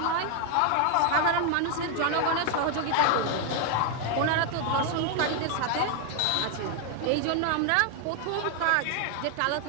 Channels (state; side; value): different; both; correlation 0.00